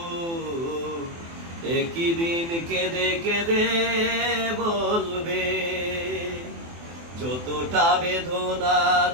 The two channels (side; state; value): left; late; 24 ms